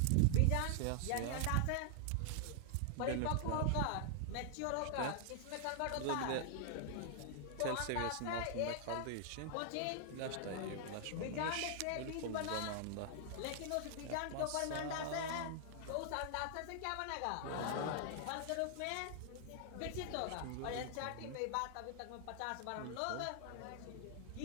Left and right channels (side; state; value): both; different; correlation -0.01